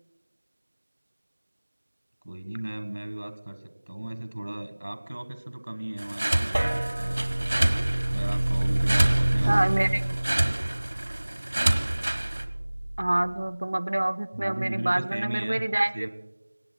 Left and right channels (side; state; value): both; inverted; correlation -1.00